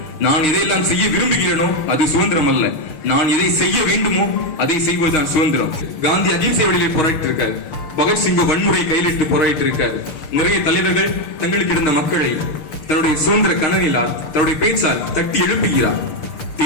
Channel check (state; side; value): late; right; 6.4 ms